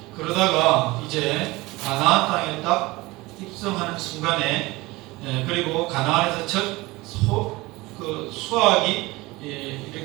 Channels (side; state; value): left; quieter; 21.3 dB